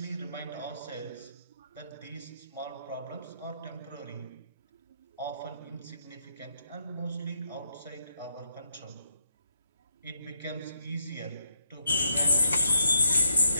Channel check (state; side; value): inverted; both; correlation -0.76